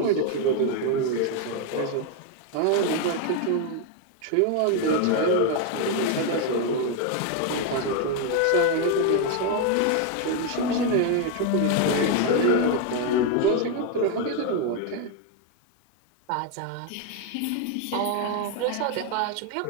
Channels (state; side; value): different; both; correlation 0.01